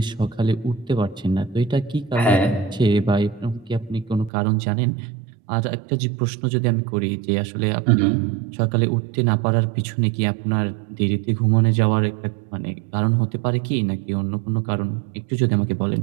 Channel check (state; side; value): drops out; left; at 4.3 s